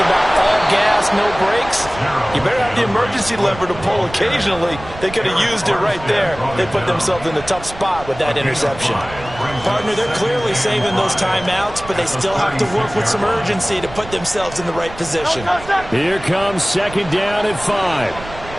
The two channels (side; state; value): right; noise; rumble, 15 dB below the sound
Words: about all gas, no brakes, you better have the emergency lever to pull occasionally. They could have used it right there. They put themselves in a tough spot with that interception. Partner, they're clearly saving those timeouts, but they still have to work with some urgency to put themselves in the right position. Here comes 2nd down and 5.